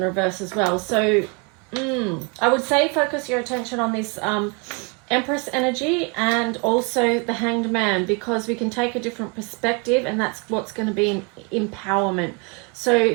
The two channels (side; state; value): left; quieter; 31.6 dB